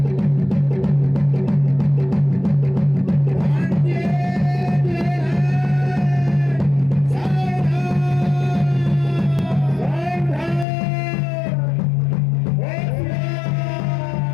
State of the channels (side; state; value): right; drops out; at 10.7 s